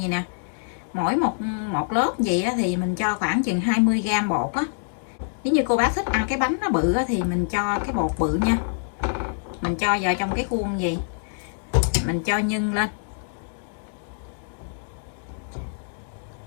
gì nè. mỗi một lớp gì á, thì mình cho khoảng chừng 20g bột á. Nếu như cô bác thích ăn cái bánh nó bự á, thì mình cho cái bột bự nha. Mình cho vào trong cái khuôn gì, mình cho nhân lên,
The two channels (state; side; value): silent; right; 62 dB below the other